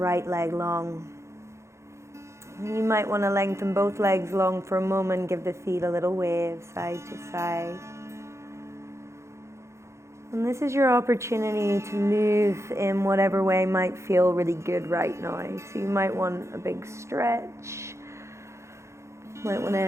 leg long. You might want to lengthen both legs long for a moment, give the feet a little wave side to side. And this is your opportunity to move in whatever way might feel really good right now. So you might want a big stretch. You might want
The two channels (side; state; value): left; late; 0.14 ms